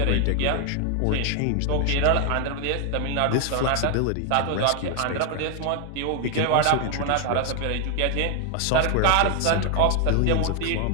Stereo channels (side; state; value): both; different; correlation 0.00